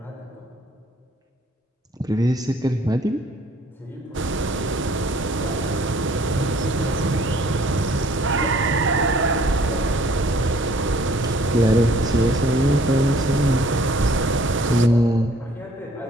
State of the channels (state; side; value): normal; both; correlation 0.58